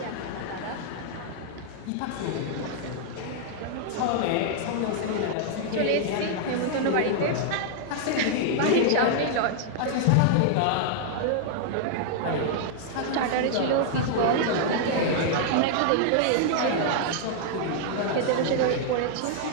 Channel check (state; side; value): different; both; correlation -0.01